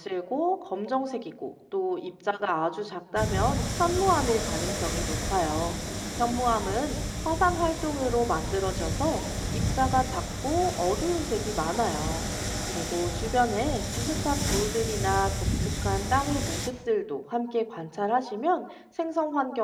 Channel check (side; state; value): both; identical; correlation 1.00